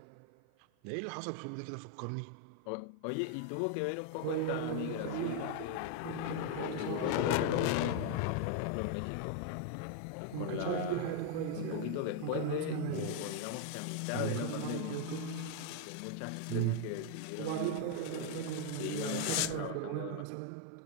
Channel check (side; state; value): both; different; correlation 0.00